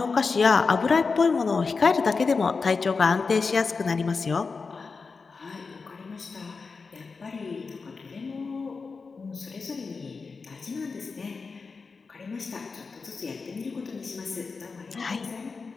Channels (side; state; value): right; quieter; 4.6 dB